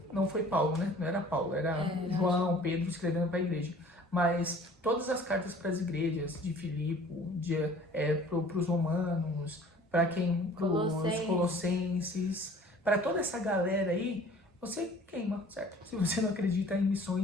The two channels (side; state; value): both; normal; correlation 0.49